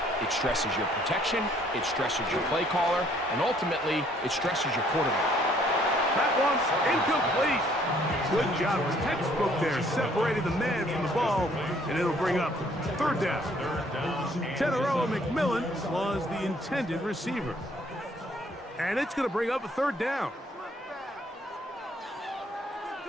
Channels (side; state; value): both; normal; correlation 0.63